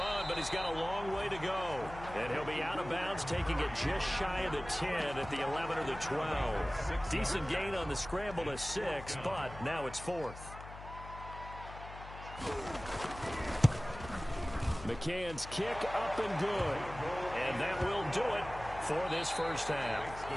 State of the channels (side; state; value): left; noise; hum, 13 dB below the sound